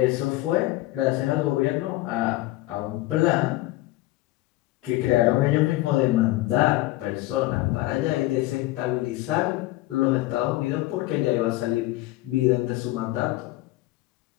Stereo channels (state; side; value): quieter; right; 18.0 dB